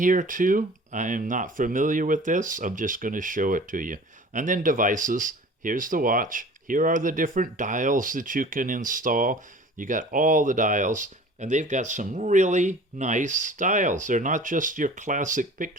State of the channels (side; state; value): both; normal; correlation 0.43